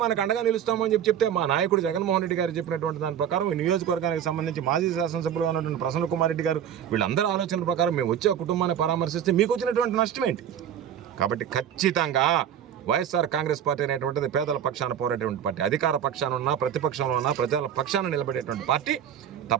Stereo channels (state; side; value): quieter; left; 9.4 dB